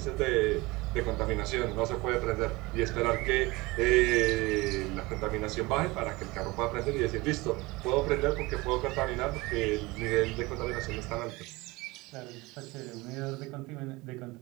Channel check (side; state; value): left; quieter; 22.6 dB